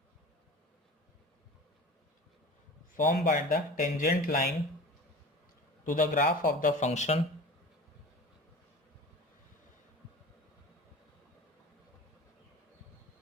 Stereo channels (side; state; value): both; normal; correlation 0.36